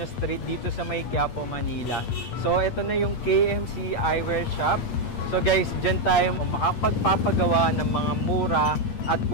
Street dito sa May Quiapo, Manila. So ito na yung KMC Eyewear Shop. So guys, dyan tayo makapagpapagawa ng mga mura at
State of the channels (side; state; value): right; late; 8.5 ms